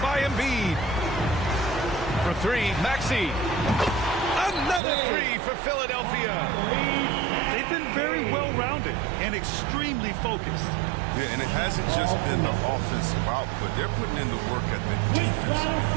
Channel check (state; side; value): drops out; left; at 4.8 s